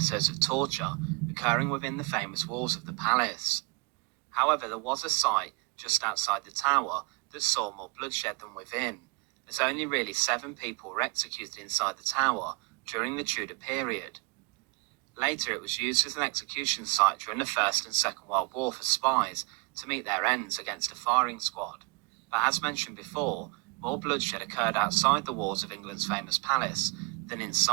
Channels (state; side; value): quieter; left; 31.9 dB